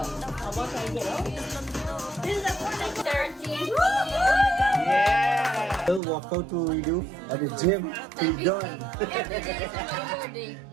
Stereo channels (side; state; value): left; drops out; at 6.0 s